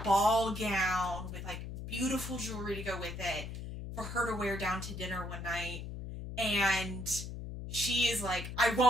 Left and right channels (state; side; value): noise; left; hum, 8 dB below the sound